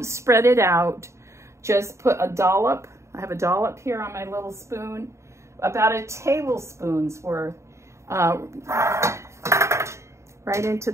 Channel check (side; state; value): left; late; 0.14 ms